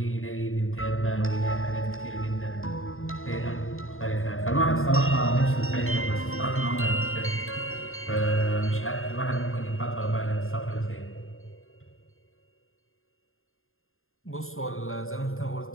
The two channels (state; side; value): late; right; 0.61 ms